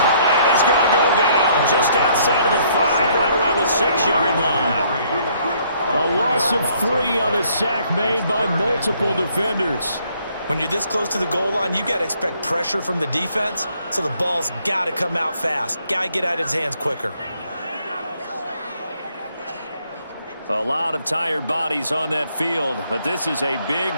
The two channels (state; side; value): inverted; both; correlation -0.65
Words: he's going to go down just outside of the 5, right around the 6-yard line. A loss of 3 on a sack made by multiple defenders. When you're this close to the goal line, you got to expect pressure from the defense, so the ball's got to come out fast. Got to get out of his hands quicker. A lot of tired bodies on that field, but this is a big